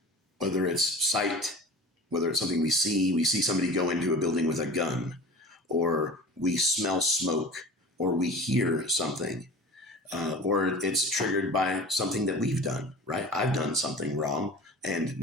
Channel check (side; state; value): both; normal; correlation 0.38